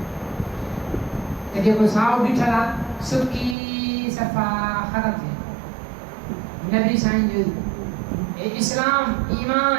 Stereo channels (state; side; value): drops out; left; at 3.6 s